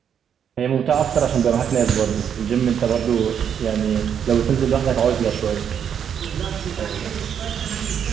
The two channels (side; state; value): left; quieter; 8.3 dB